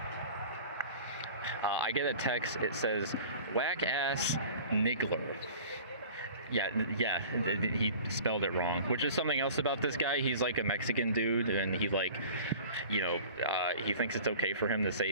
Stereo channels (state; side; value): inverted; both; correlation -0.43